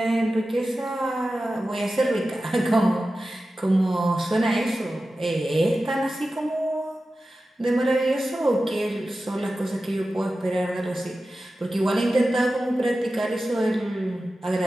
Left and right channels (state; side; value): normal; both; correlation 0.94